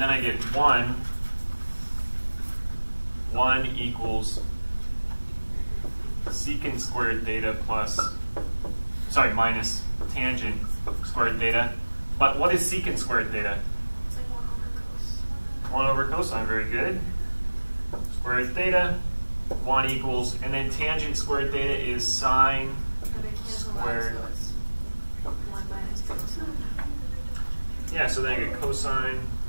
I get 1 equals secant squared theta minus tangent squared theta. But what is secant squared theta? It's like 1 over cosine, very good. Squared theta, 1 equals, and then tangent squared theta is sine squared. Yeah, so then I get cosine,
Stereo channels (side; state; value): both; inverted; correlation -1.00